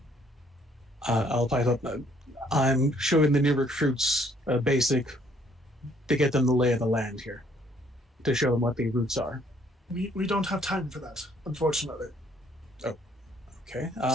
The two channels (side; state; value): both; normal; correlation 0.64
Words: I'll pipe up. I'm showing the new recruits a basic to get them the lay of the land here, to show them what the routes are. We don't have time for that, unfortunately. Oh, okay.